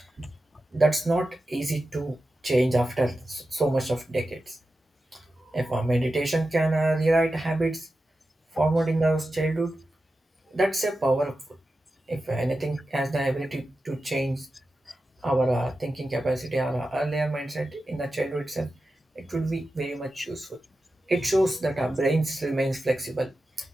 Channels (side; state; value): both; normal; correlation 0.92